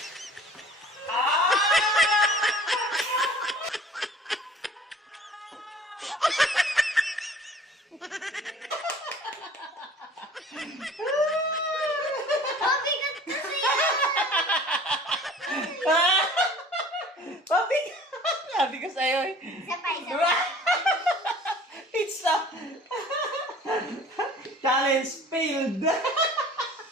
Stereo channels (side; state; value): both; normal; correlation 0.48